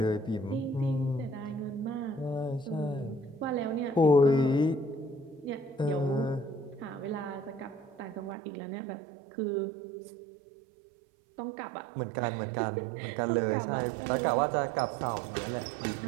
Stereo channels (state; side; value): drops out; left; at 8.3 s